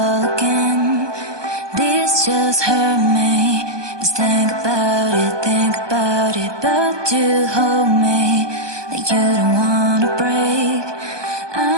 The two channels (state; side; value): late; left; 1.2 ms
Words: again. This just hurt me. Just think about it, but you hold me like you don't wanna break.